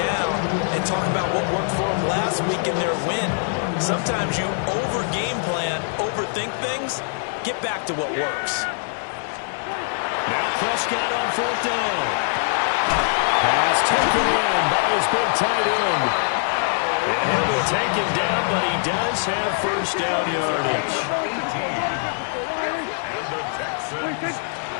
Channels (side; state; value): right; silent; digital silence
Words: and talk about what worked for them last week in their win. Sometimes you over-game plan, overthink things, get back to what works. Prescott on 4th down. Pass taken in by his big tight end. And he'll be taken down, but he does have first down yardage. And the Texans